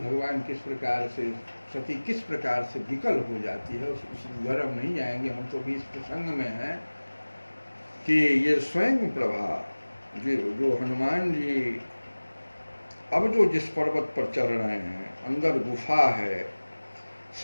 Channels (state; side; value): inverted; both; correlation -1.00